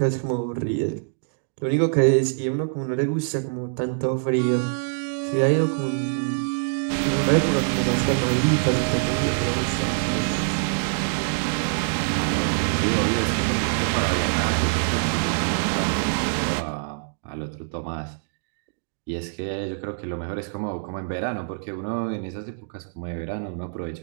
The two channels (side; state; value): left; silent; digital silence